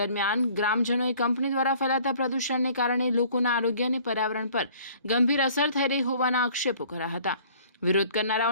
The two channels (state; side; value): inverted; both; correlation -0.54